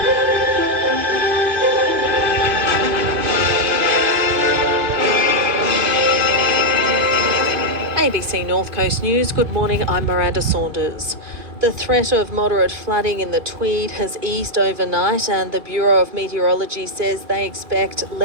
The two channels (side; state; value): left; late; 2.5 ms